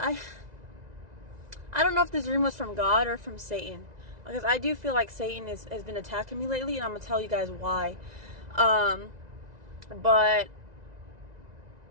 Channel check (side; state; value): left; late; 1.9 ms